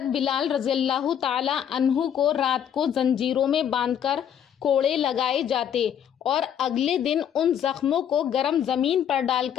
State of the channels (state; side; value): quieter; right; 9.1 dB